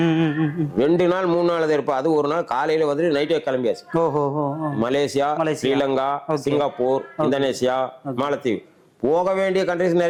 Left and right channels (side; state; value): both; identical; correlation 1.00